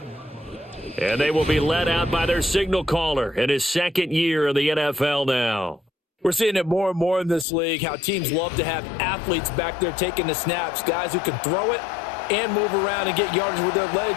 And they will be led out by their signal caller in his 2nd year in the NFL now. We're seeing it more and more in this league, how teams love to have athletes back there taking the snaps, guys who can throw it and move around and get yardage with their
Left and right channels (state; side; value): drops out; right; at 7.5 s